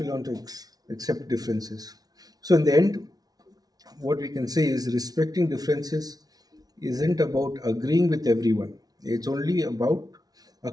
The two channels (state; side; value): late; left; 0.19 ms